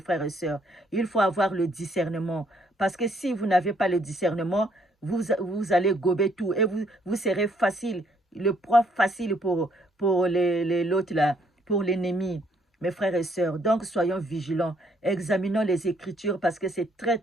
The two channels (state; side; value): normal; both; correlation 0.68